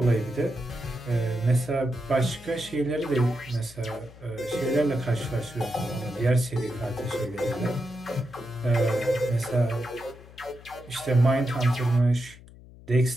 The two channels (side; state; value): left; noise; hum, 20 dB below the sound